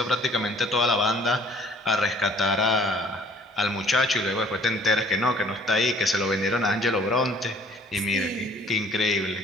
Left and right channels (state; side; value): normal; both; correlation 0.56